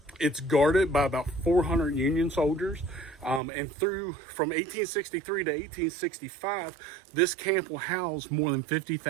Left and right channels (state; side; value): drops out; left; at 3.4 s